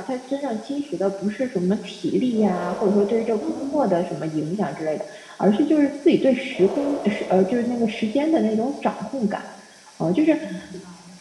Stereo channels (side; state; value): both; identical; correlation 1.00